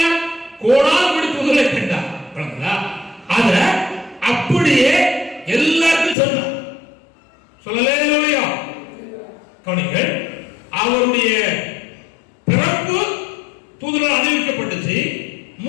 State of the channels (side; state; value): right; drops out; at 6.2 s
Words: கோடால் தூதரை கண்டார். அத அப்படியே எல்லாருக்கும் சொன்னார். சொல்லலையா? கவனிங்கள், அவருடைய பிறப்பு தூதரால் அறிவிக்கப்பட்டுச்சு,